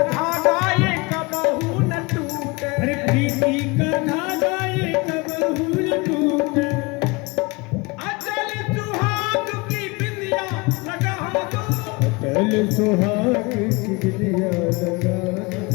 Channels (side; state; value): right; quieter; 25.9 dB